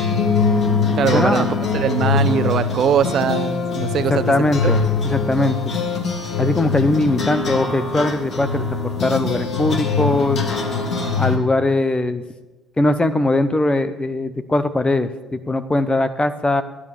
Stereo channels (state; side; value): normal; both; correlation 0.58